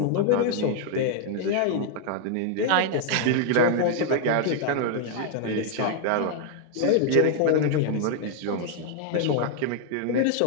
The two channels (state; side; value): different; both; correlation 0.00